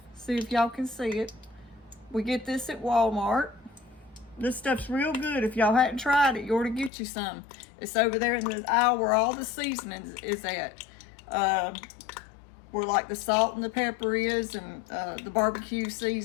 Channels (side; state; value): right; drops out; at 6.9 s